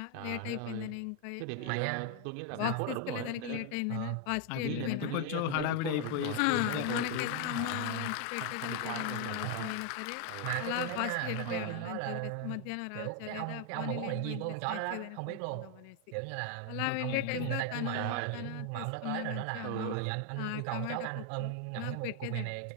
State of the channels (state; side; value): different; both; correlation 0.01